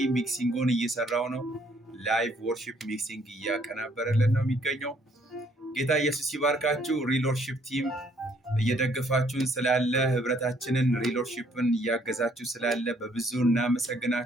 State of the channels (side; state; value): both; normal; correlation 0.65